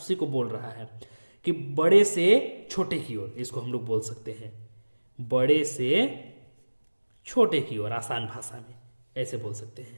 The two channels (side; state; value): both; inverted; correlation -1.00